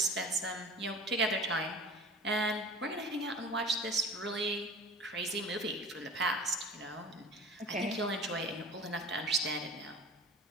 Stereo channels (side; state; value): both; normal; correlation 0.39